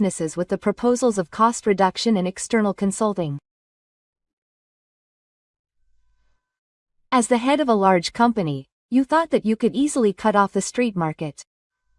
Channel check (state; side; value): identical; both; correlation 1.00